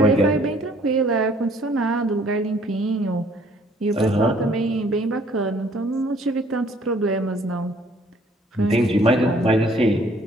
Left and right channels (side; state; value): both; normal; correlation 0.59